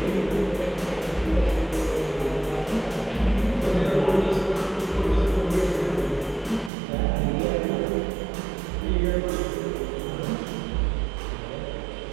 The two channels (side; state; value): left; drops out; at 6.7 s